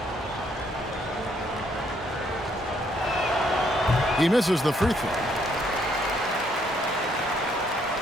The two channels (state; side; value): normal; both; correlation 0.70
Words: He misses the free throw.